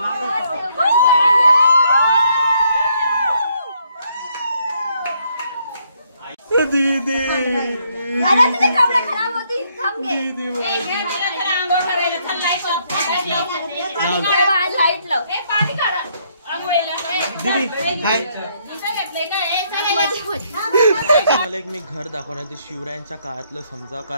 दीदी खराब होती लाईट लाव मला एक मी घर दाखवणार ते शिवरायांच्या काळातलं समजा,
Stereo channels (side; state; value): both; inverted; correlation -0.71